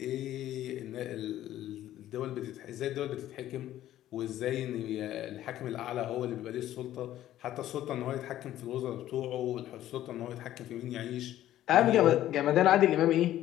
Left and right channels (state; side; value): quieter; right; 13.1 dB